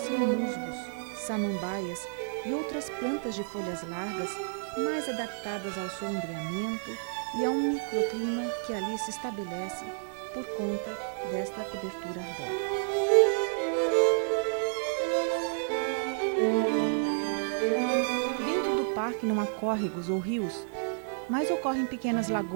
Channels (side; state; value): left; silent; 57 dB below the other